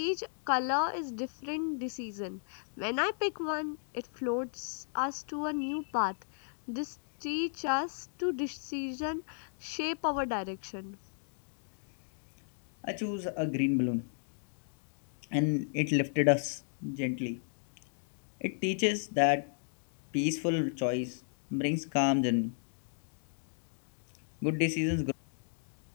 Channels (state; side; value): silent; right; digital silence